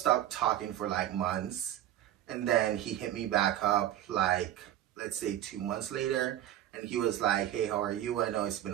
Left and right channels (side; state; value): left; quieter; 12.4 dB